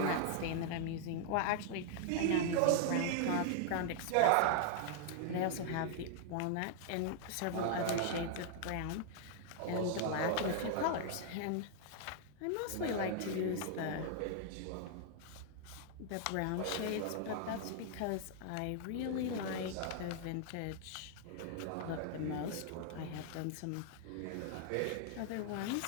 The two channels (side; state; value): both; different; correlation 0.00